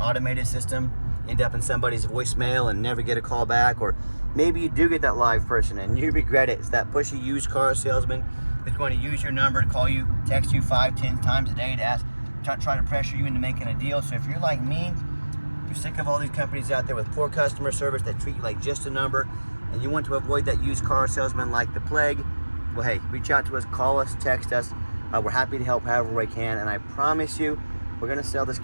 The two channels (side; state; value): both; inverted; correlation -1.00